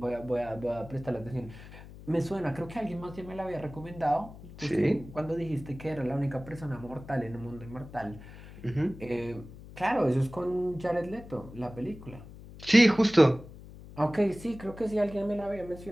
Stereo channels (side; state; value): left; noise; hum, 16 dB below the sound